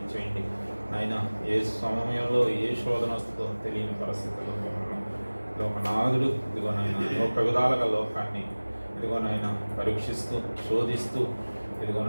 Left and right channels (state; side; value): inverted; both; correlation -1.00